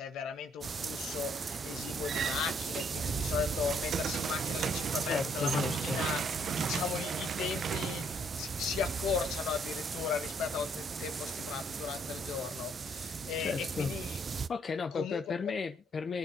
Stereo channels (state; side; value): normal; both; correlation 0.68